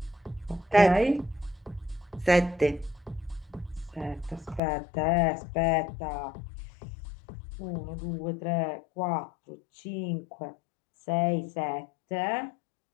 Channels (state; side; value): drops out; right; at 4.6 s